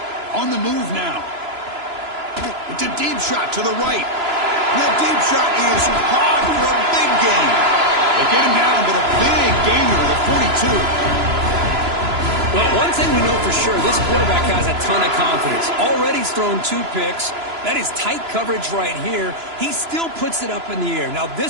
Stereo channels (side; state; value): left; late; 3.0 ms